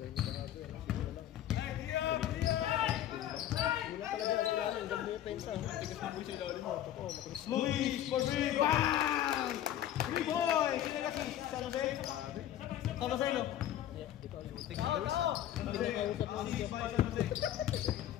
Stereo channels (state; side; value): quieter; right; 11.8 dB